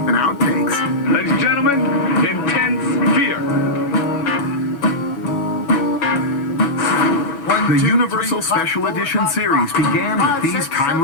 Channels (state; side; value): late; right; 7.1 ms